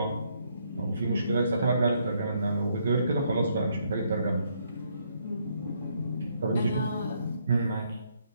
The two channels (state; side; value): inverted; both; correlation -0.72